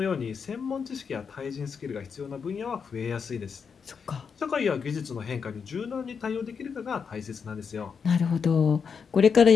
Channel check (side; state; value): right; quieter; 6.2 dB